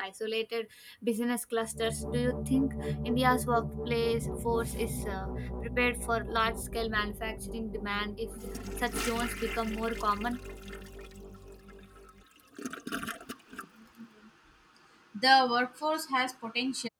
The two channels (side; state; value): both; identical; correlation 1.00